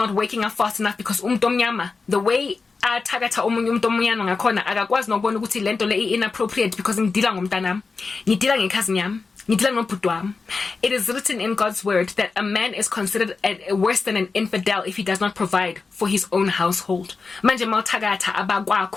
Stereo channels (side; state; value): right; quieter; 4.4 dB